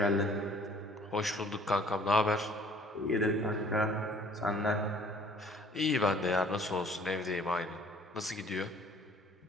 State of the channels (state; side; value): normal; both; correlation 0.55